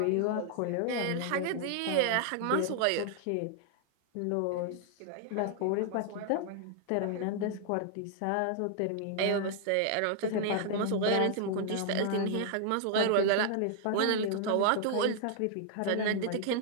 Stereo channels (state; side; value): different; both; correlation -0.01